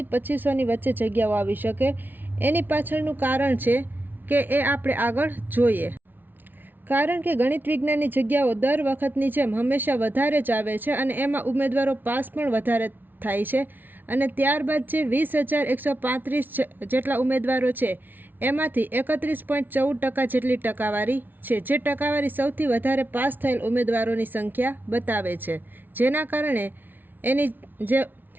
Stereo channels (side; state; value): left; late; 0.089 ms